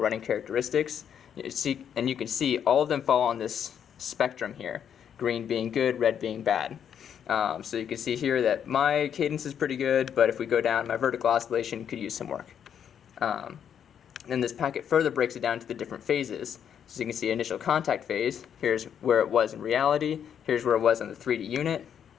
characteristics. And you can see all of them fall on this spectrum here, green being good, red being bad. So you can see here that my cadence is pretty good, but if we go down, my vertical oscillation could use some work. Then this packet further breaks it down to the different phases. So you can see initial contact phase, here's where it was in reality, here's where it was on the 3D unit,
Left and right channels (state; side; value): quieter; right; 8.6 dB